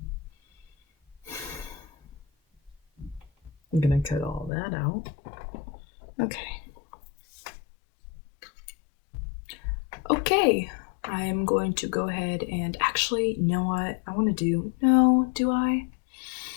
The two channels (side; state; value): right; drops out; at 4.5 s